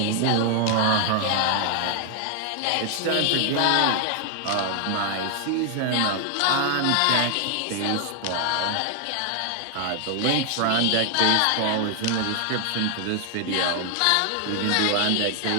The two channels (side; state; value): both; different; correlation 0.00